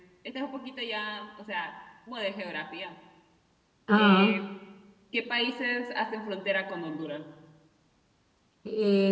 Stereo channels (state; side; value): identical; both; correlation 1.00